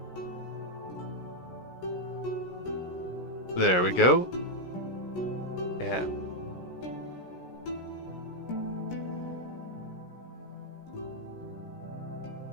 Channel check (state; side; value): late; right; 17 ms